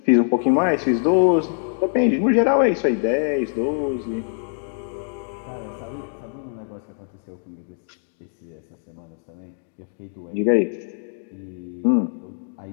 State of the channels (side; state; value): right; silent; digital silence